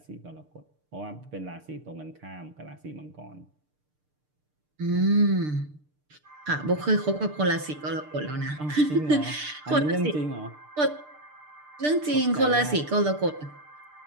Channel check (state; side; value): late; left; 6.7 ms